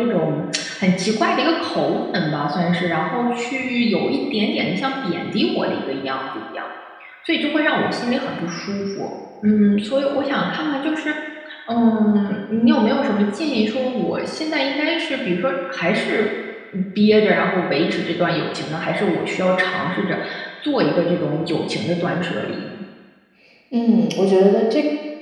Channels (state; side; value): identical; both; correlation 1.00